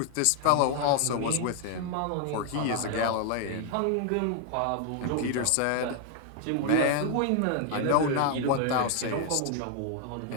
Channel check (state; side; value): different; both; correlation 0.00